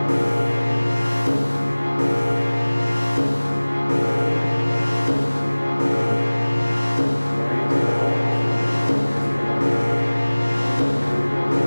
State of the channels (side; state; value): both; inverted; correlation -1.00